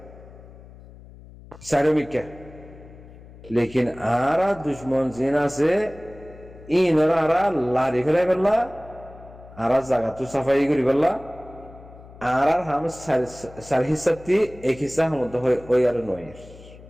চারিমিকে লেকিন আর দুশ্মন জিন আছে ইনরা আরা লারি ফেলাই বললা আর জায়গা তো সাফাই করি বললা আর হাম সার হিসাবটি এক হিসা মধ্যে হই আর নয়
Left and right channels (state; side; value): noise; left; hum, 19 dB below the sound